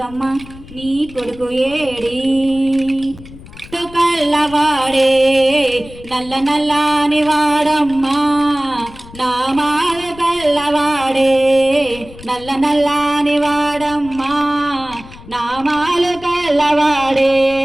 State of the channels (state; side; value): noise; left; rumble, 18 dB below the sound